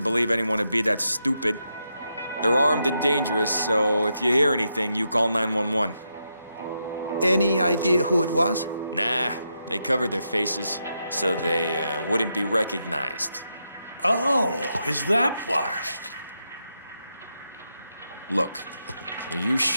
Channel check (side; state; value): both; inverted; correlation -0.83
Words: believe anyone would be that stupid. They're armed and dangerous, so if you hear anything, you call 911. Any idea who it was? Nah, they covered their faces, so they wouldn't be recognized. Oh, is that why? Look, are you